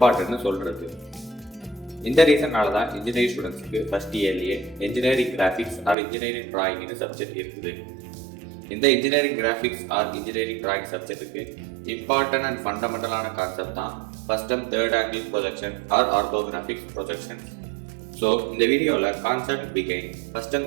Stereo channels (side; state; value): left; drops out; at 6.0 s